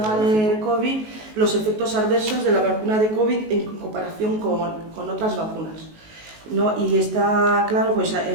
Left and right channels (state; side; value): late; left; 19 ms